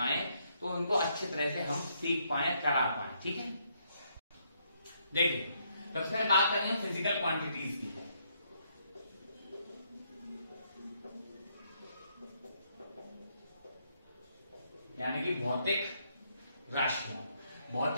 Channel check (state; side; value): inverted; both; correlation -0.73